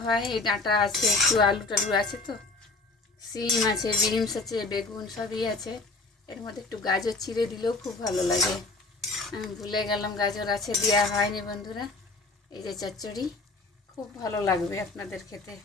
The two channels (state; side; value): quieter; right; 3.5 dB